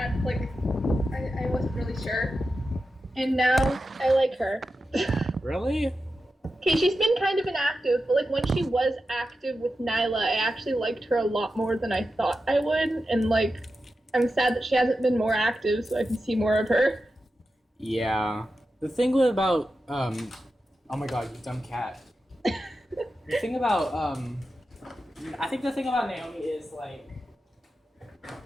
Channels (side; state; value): both; normal; correlation 0.91